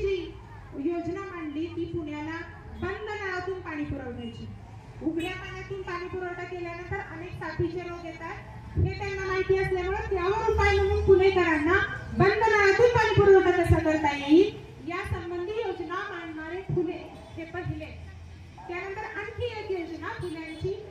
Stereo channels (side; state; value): both; identical; correlation 1.00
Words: योजना मांडली ती पुण्याला बंद नळातून पाणी पुरवण्याची। उघड्या पाण्यातून पाणी पुरवठा केल्यानंतर अनेक साथीचे रोग येतात, हे त्यांना माहिती असल्यामुळे त्यावर उपाय म्हणून पुणेकरांना बंद नळातून पाणी पुरवठा कसा करता येईल या संबंधी योजना मांडणारे फुले हे पहिले। त्यानंतर आणखी एक योजना फुल्यांची,